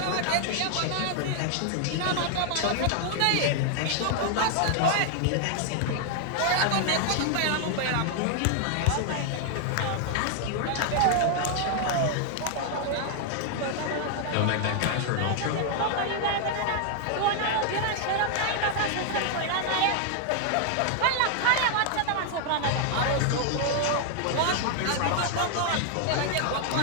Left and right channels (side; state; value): both; different; correlation 0.00